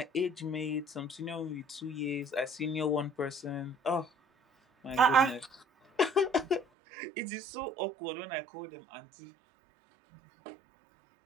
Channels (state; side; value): drops out; left; at 6.7 s